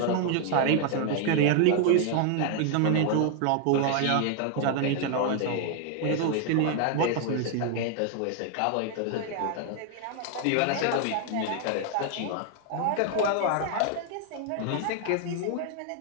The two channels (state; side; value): different; both; correlation 0.00